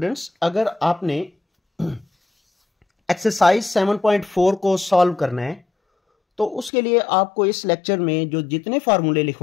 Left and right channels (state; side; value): drops out; right; at 6.7 s